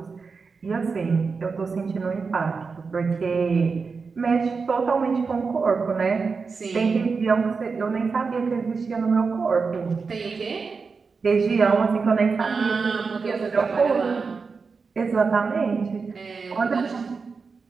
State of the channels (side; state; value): left; quieter; 4.9 dB